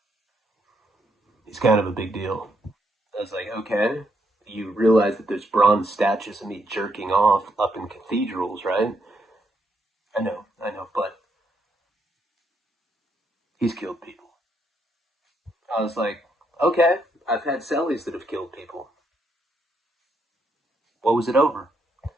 He's kind of a big deal. I was like, okay. You realize that there's bronze statues of me jerking off up in cathedrals, right? I know, but he's killed people. I was like, okay, I've had cellies that have killed people. What was it over?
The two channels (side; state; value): both; normal; correlation 0.76